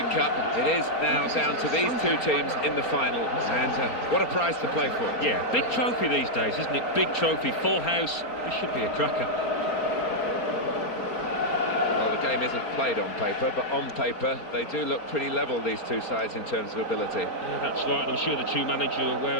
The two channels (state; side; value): late; right; 4.3 ms